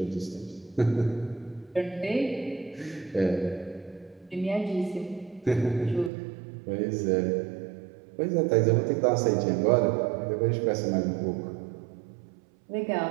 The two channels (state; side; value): drops out; left; at 6.1 s